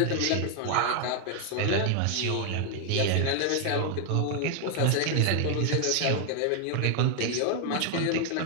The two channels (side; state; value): both; different; correlation 0.00